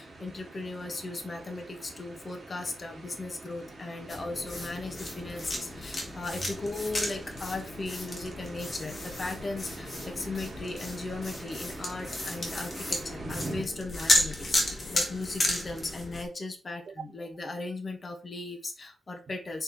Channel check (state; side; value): normal; both; correlation 0.89